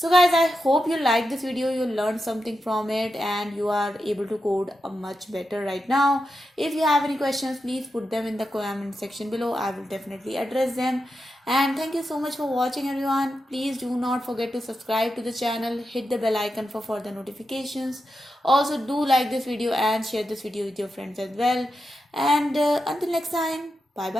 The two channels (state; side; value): normal; both; correlation 0.88